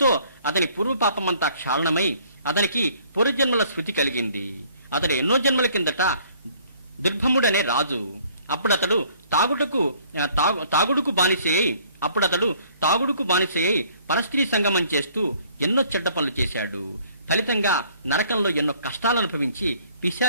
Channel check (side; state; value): both; inverted; correlation -0.59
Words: అతని పూర్వపాపమంతా క్షాళనమై అతనికి పూర్వజన్మల స్మృతి కలిగింది. అతడు ఎన్నో జన్మల కిందట దుర్భముడనే రాజు. అప్పుడతడు తాగుడుకు బానిసయ్యి పరస్త్రీ సంగమం చేస్తూ ఎన్నో చెడ్డ పనులు చేశాడు. ఫలితంగా నరకంలో ఎన్నో కష్టాలు అనుభవించి